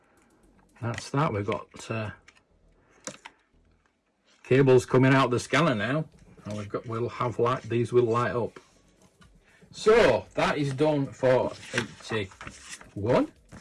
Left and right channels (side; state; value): both; identical; correlation 1.00